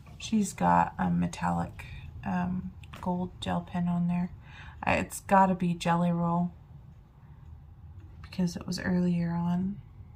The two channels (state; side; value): identical; both; correlation 1.00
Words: She's got a metallic gold gel pen on there. It's got to be Jelly Roll because it was earlier on.